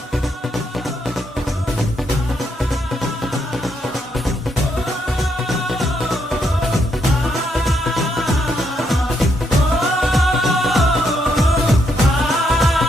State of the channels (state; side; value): normal; both; correlation 0.77